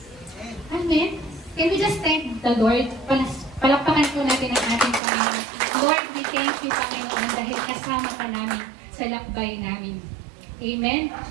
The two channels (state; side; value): drops out; left; at 5.0 s